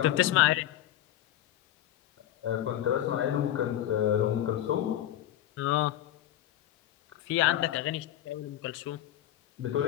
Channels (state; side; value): quieter; right; 12.7 dB